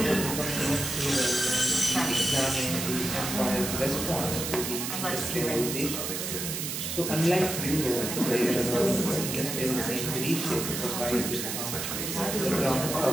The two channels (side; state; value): right; noise; hiss, 4 dB below the sound